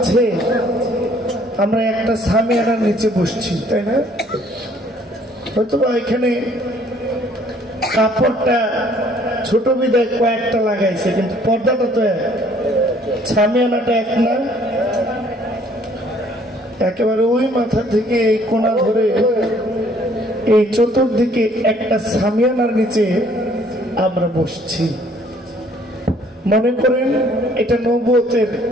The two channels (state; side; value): normal; both; correlation 0.60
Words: আমরা একটা সামিয়ানার নিচে বসছি, তাই না? হয়তো এখানে কাপড়টা ছোট বিদায় কয়েকটা লাগাইছে, কিন্তু পর্দাটা তো এক, সামিয়ানাটা এক না। একেবারে ওই মাথা থেকে এই কোণা ধরে এই চতুর্দিকে একটা সামিয়ানার নিচে আমরা বসছি। মনে করেন এটা নবুয়তের